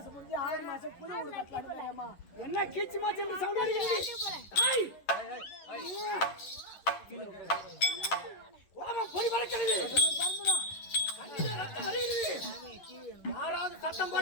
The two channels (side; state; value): right; late; 11 ms